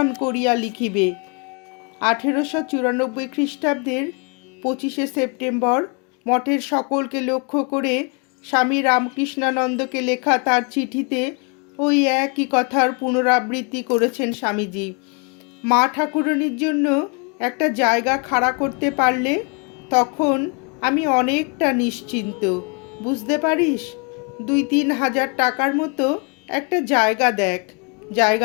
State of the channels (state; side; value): quieter; right; 34.3 dB